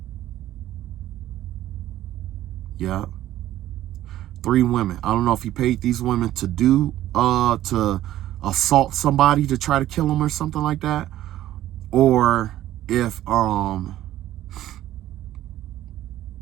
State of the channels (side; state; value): left; quieter; 13.5 dB